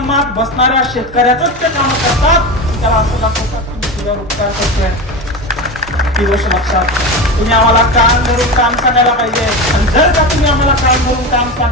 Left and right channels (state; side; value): normal; both; correlation 0.23